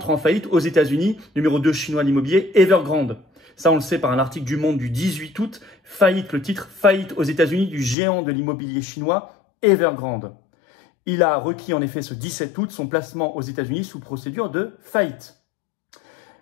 en faillite aux États-Unis, numéro 2 chinois l'immobilier, Evergrande. Ça, on le sait par un article du Monde du 18 août, faillite, le titre, faillite aux États-Unis du géant de l'immobilier chinois, Evergrande. Il a requis en effet ce 17 août son placement aux États-Unis sous procédure de faillite.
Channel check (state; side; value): drops out; right; at 8.0 s